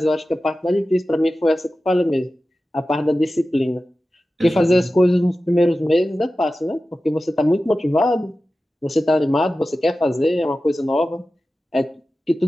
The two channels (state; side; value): normal; both; correlation 0.94